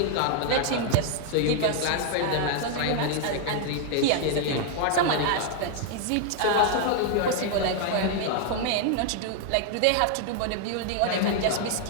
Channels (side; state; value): both; different; correlation 0.00